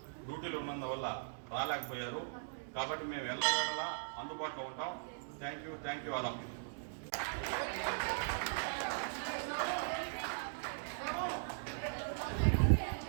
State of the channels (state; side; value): silent; left; digital silence